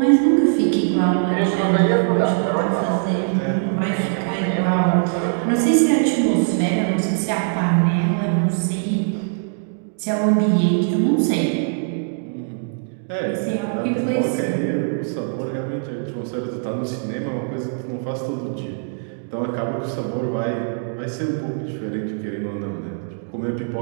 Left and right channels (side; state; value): left; silent; digital silence